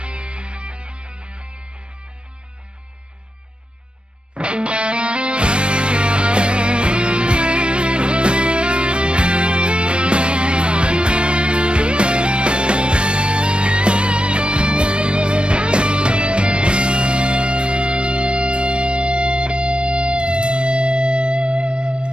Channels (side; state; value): left; late; 0.057 ms